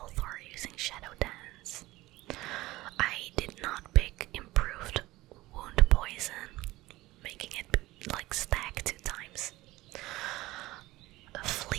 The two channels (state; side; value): quieter; left; 18.4 dB